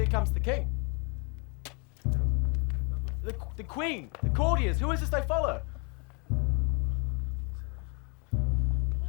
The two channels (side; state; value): right; quieter; 34.9 dB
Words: comes the king. The queen, the courtiers, who is this they follow?